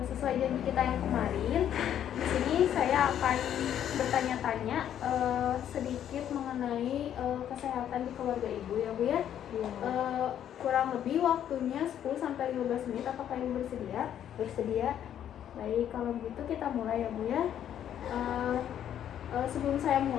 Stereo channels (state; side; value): quieter; right; 10.2 dB